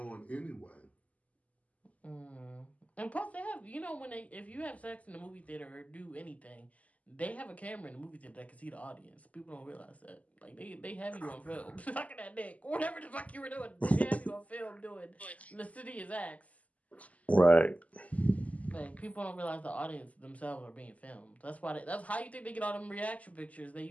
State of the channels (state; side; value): late; right; 0.072 ms